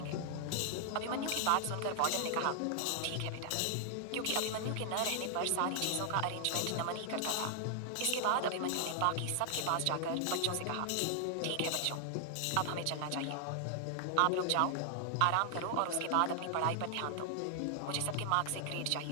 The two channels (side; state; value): both; different; correlation 0.00